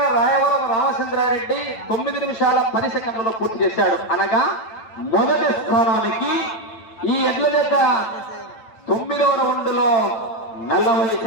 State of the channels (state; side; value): late; right; 8.9 ms